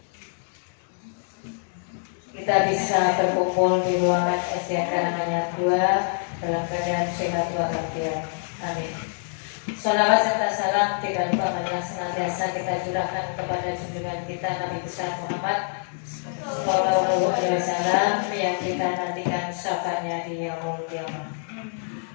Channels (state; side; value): silent; right; digital silence